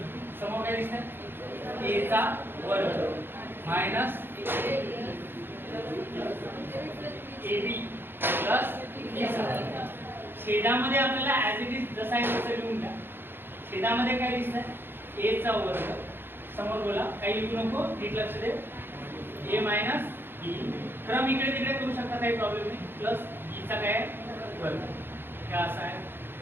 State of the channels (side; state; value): left; late; 0.10 ms